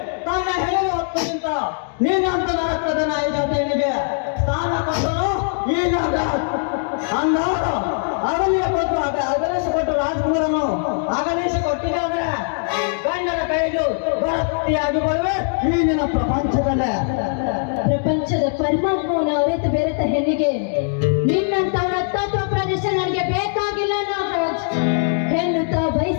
ತನ್ನ ಹೇಳುವ ಹೊತ್ತಿಗಿಂತ ನೀನಂತ ರಕ್ತದ ನಾಯಕನಿಗೆ ಸ್ಥಾನ ಕೊಟ್ಟರು ಈ ನಾಗರಾಜ್. ಅಂದಾಗ ಅಗಲಿಯ ಕೊಟ್ಟು ಅಗಲಿಸಿಕೊಟ್ಟು ರಾಜಕುಮಾರನು ಅಗಲಿಸಿಕೊಟ್ಟಿದೆ ಅಂದ್ರೆ ಗಂಡನ ಕೈಲು ಭರ್ತಿಯಾಗಿ ಬರುವೆ ಈ ನಿನ್ನ ಪ್ರಪಂಚದಲ್ಲೇ. ಪ್ರಪಂಚದ ಪರಮಾತ್ಮವನ್ನು ಅರಿತು ಬೆರೆತ ಹೆಣ್ಣಿಗೆ ನಿನ್ನಂತವರ ತತ್ವ ಪ್ರದೇಶ ನನಗೆ ಬೇಕಾಗಿಲ್ಲ ನಾಗರಾಜ್. ಹೆಣ್ಣು ತಾ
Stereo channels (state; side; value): silent; right; digital silence